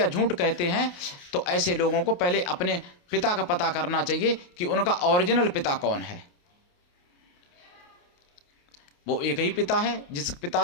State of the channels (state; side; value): late; right; 28 ms